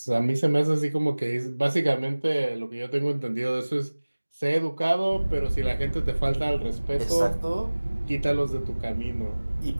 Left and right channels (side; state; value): both; inverted; correlation -1.00